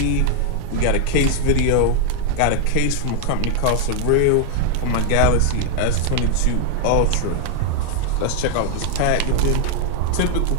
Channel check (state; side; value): different; both; correlation 0.00